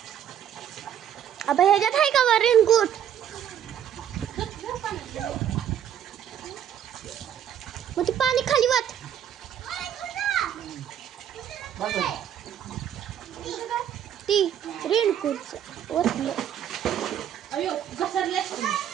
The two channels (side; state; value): left; quieter; 9.8 dB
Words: अब ह्याच्यात आहे का वर रेनकोट. मग ते पाणी खाली वाट. बस आहे. ती रेनकोट वरलं. अयो घसरले